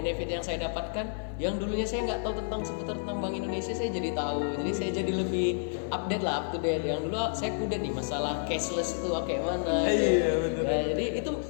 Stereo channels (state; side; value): silent; right; 58 dB below the other